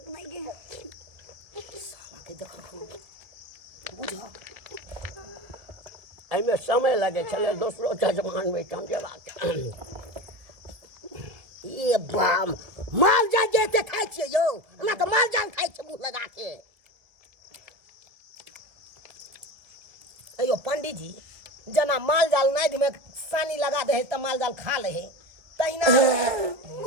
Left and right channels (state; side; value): late; left; 2.0 ms